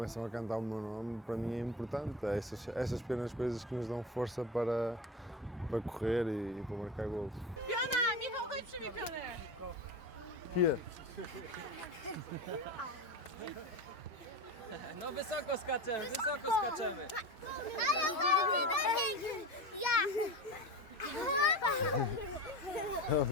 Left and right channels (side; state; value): both; normal; correlation 0.27